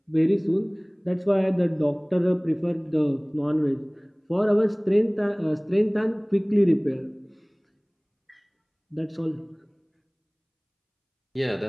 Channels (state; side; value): identical; both; correlation 1.00